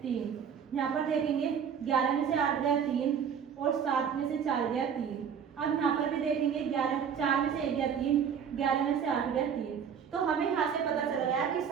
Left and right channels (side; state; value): left; quieter; 7.5 dB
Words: 3। यहाँ पर देखेंगे 11 में से 8 गया 3 और 7 में से 4 गया 3। अब यहाँ पर भी देखेंगे 4 में से 1 गया 3, 11 में से 8 गया 3। तो हमें यहाँ से पता चल गया कि